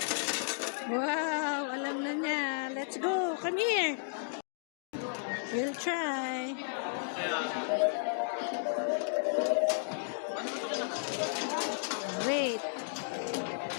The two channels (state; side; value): silent; right; digital silence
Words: Wow, alam na niya. Let's go. Come here. We'll try. Wait.